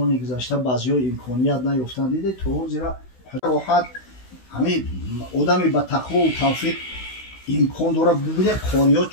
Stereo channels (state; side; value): late; right; 16 ms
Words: گذشته بعضی‌ها امکانیت نیافتن دیده تو زیرا راحت همین آدمی با تقوا و توفیق امکان داره ببینه قاریات